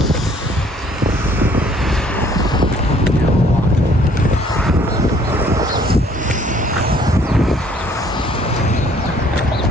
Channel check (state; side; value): normal; both; correlation 0.60